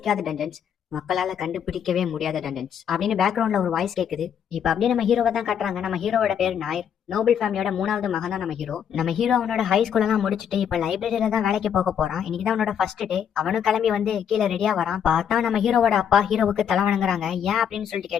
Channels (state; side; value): quieter; right; 8.5 dB